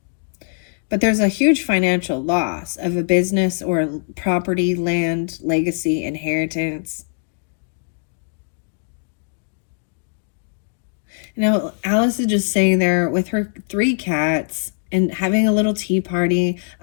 But there's a huge financial loss of a business or property, land, legacy, inheritance. You know, Alice is just sitting there with her 3 cats and having a little tea party,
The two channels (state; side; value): silent; right; 60 dB below the other